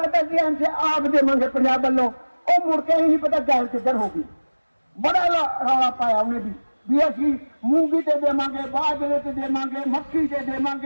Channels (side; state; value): both; inverted; correlation -1.00